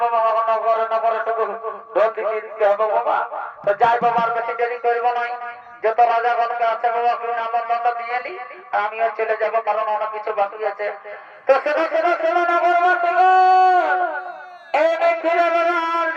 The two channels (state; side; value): identical; both; correlation 1.00